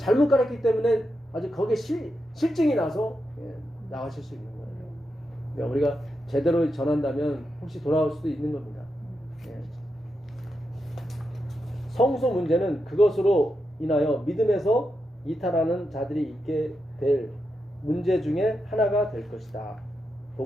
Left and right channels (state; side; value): normal; both; correlation 0.86